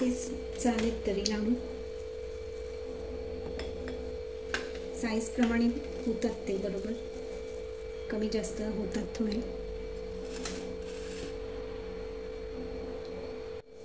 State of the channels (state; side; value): identical; both; correlation 1.00